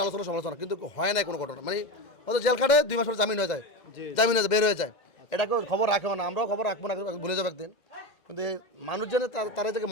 আলোচনা সমালোচনা, কিন্তু হয় নাই কোনো ঘটনা। মানে হয়তো জেল খাটে 2 মাস পরে জামিন হয়ে যায়, বের হয়ে যায়। এটাকে খবর রাখে না, আমরাও খবর রাখবো না, ভুলে যাবো একদিন। কিন্তু মানুষ যেন তারা যাকে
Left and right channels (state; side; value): normal; both; correlation 0.19